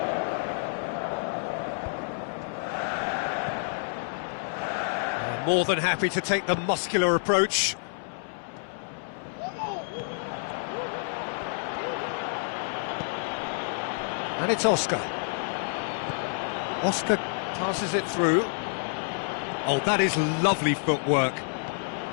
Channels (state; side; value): silent; right; 59 dB below the other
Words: More than happy to take the muscular approach. And it's Oscar. Oscar passes it through. Oh, that is lovely footwork.